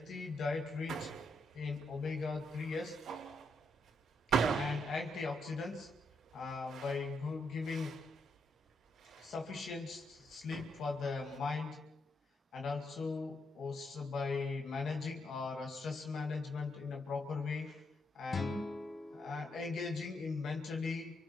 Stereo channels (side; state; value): both; normal; correlation 0.79